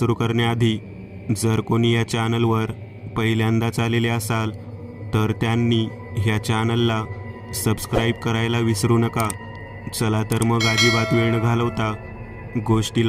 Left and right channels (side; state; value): both; identical; correlation 1.00